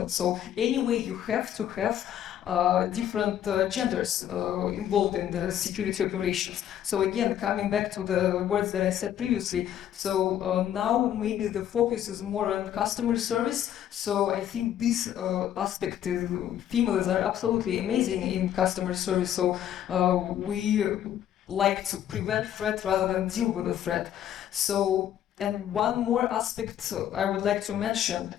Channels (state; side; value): quieter; right; 10.7 dB